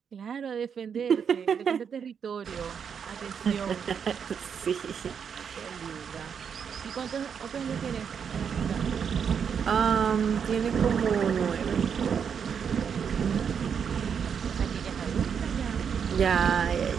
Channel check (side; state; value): left; quieter; 7.2 dB